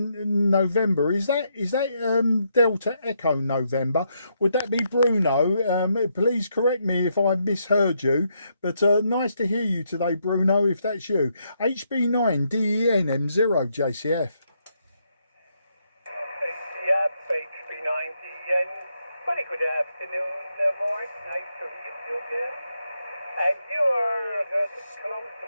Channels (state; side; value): inverted; both; correlation -0.78